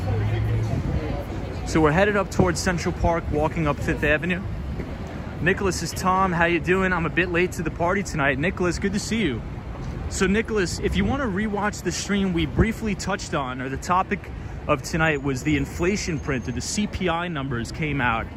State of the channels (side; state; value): both; identical; correlation 1.00